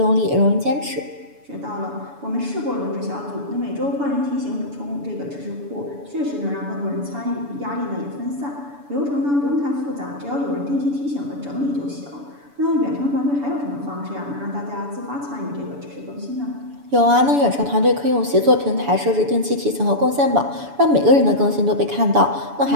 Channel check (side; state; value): left; late; 7.0 ms